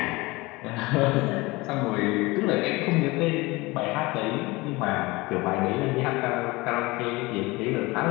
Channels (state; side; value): quieter; right; 22.5 dB